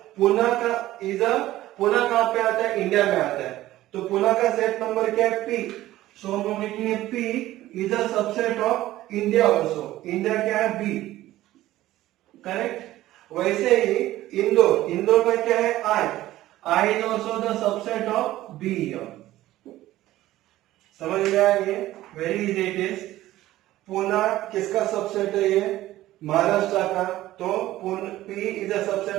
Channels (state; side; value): quieter; left; 15.3 dB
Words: पुणे का इज अ, पुणे कहाँ पे आता है, इंडिया में आता है। तो पुणे का सेट नंबर क्या है, पी। सो हम लोग लिखेंगे P is a subset of India also. India क्या है, बी, करेक्ट। वैसे ही इंदौर, इंदौर का क्या है, I. I is also the subset of B. समझ में आया ये, very easy it is. Pune किसका सबसेट है, ये महाराष्ट्र का। तो P is a